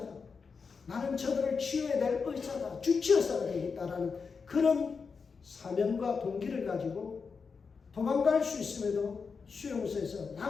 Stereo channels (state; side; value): quieter; right; 5.3 dB